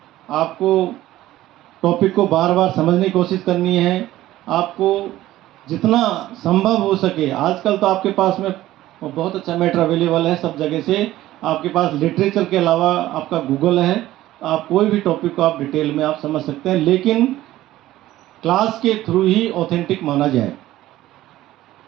आपको टॉपिक को बार बार समझने की कोशिश करनी है, आपको जितना संभव हो सके। आजकल तो आपके पास में बहुत अच्छा मैटर अवेलेबल है सब जगह से, आपके पास लिटरेचर के अलावा आपका गूगल है, आप कोई भी टॉपिक को आप डिटेल में आप समझ सकते हैं, लेकिन क्लास के थ्रू ही ऑथेंटिक माना जाए,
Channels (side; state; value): left; quieter; 15.2 dB